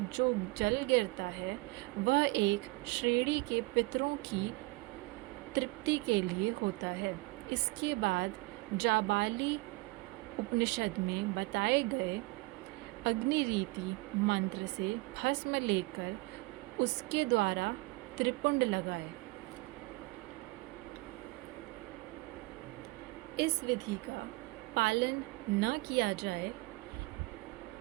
जो जल गिरता है वह एक श्रेणी के पितरों की तृप्ति के लिए होता है। इसके बाद जाबाली उपनिषद में बताए गए अग्निरीति मंत्र से भस्म लेकर उसके द्वारा त्रिपुंड लगाए। इस विधि का पालन न किया जाए,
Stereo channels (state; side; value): quieter; left; 23.7 dB